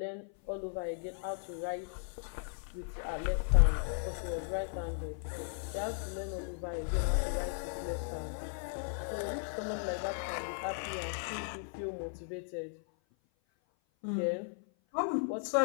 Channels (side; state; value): right; silent; 54 dB below the other